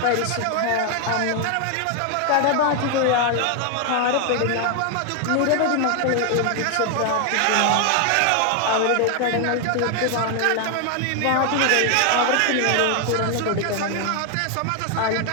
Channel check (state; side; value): different; both; correlation 0.01